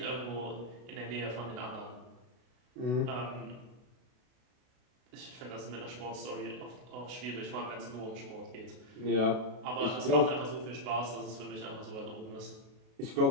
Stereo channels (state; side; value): late; left; 32 ms